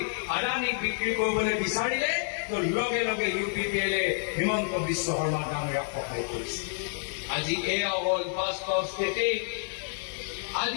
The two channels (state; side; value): silent; right; 57 dB below the other